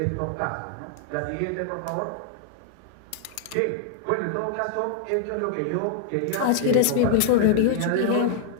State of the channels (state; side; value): different; both; correlation -0.01